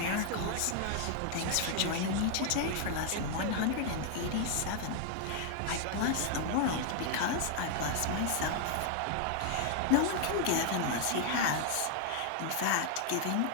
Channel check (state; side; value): different; both; correlation 0.00